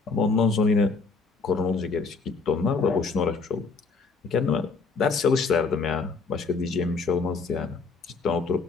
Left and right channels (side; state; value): right; quieter; 4.4 dB